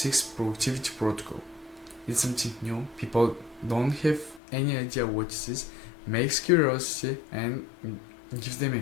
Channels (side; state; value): right; drops out; at 4.4 s